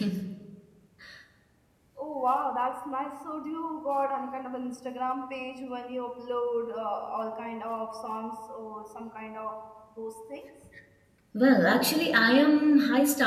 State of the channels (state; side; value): identical; both; correlation 1.00